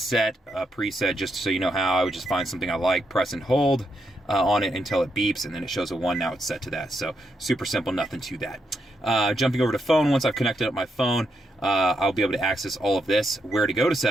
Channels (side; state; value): both; normal; correlation 0.81